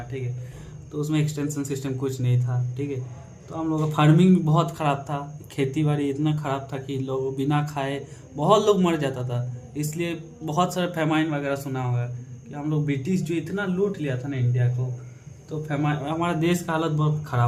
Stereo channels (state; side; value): identical; both; correlation 1.00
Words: ठीक है। तो उसमें एक्सटेंशन सिस्टम कुछ नहीं था। ठीक है। तो हम लोग का फार्मिंग भी बहुत ख़राब था। खेती बाड़ी इतना ख़राब था कि लोग बिना खाए बहुत लोग मर जाता था। इसलिए बहुत सारे फेमाइन वगैरह सुना होगा कि हम लोग ब्रिटिश जो इतना लूट लिया था ना इंडिया को, तो फेमाइन हमारा देश का हालत बहुत